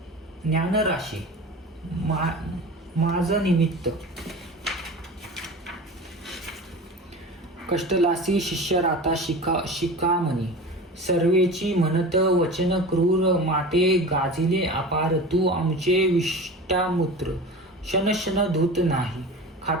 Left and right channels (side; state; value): both; normal; correlation 0.33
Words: ज्ञानराशी. माझ निमित्त कष्टलासी शिष्य राता शिकामणी. सर्वेची म्हणत वचन क्रूर. माते गाजिले अपार. तू आमचे विष्टामूत्र क्षण धूत नाही.